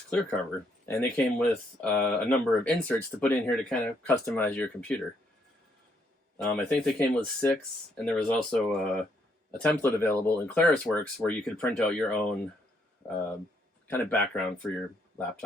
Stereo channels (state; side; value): normal; both; correlation 0.72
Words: clear cover, and they came with a number of inserts to put in here to kind of customize your computer. I think they came with 6, and there was also a template available in ClarisWorks where you could print out your own kind of background for your